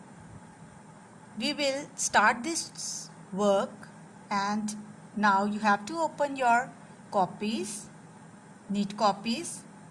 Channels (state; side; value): identical; both; correlation 1.00